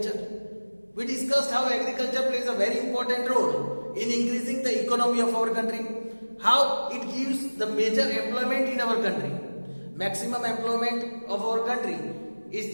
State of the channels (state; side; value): inverted; both; correlation -1.00